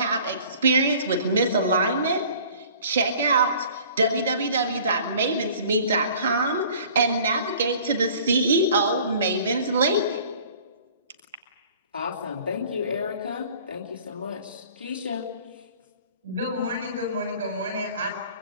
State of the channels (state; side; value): inverted; both; correlation -0.50